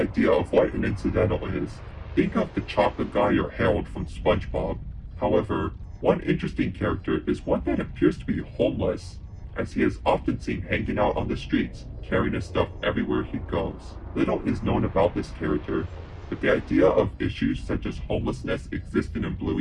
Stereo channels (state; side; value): identical; both; correlation 1.00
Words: of what an incidental is, think of the chocolate guy or Harold from SpongeBob. However, one interesting character is one that appears to be homeless, as he is often seen hanging out on the streets, carrying his stuff everywhere he goes. Little is known about this character, but the idea of issues such as homelessness existing in